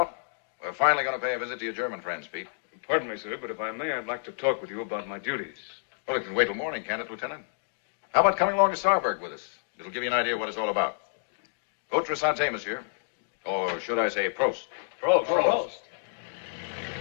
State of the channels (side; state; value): right; silent; digital silence